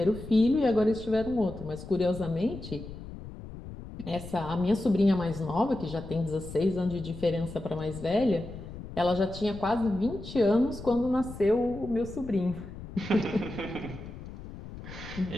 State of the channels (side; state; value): left; noise; rumble, 12 dB below the sound